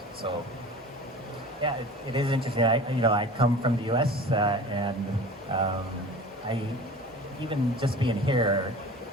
So, yeah, it is interesting. I come from the U.S. And I even just being here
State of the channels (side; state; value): both; normal; correlation 0.39